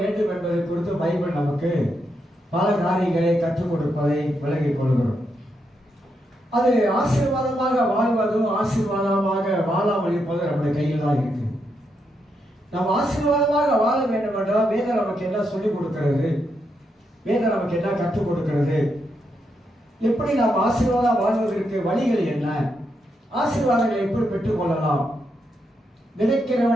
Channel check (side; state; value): both; normal; correlation 0.81